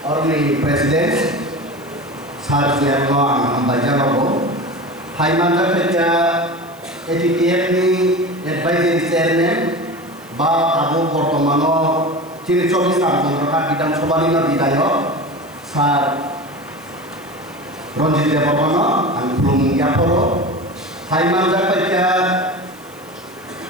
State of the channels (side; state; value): right; noise; hiss, 26 dB below the sound